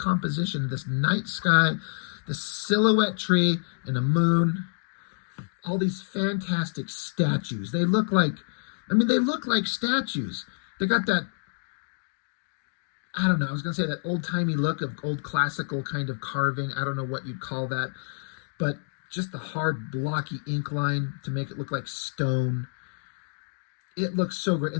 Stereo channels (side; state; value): right; silent; digital silence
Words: this night sky, the silhouette tree and a moon, all these fantastic statues. They look like statues. They got that, I don't know, I was going to say that old-timey look of old classical kind of carving. I don't know what you'd call that, but just the hard, blocky ink line to make it look like stone. It looks so great.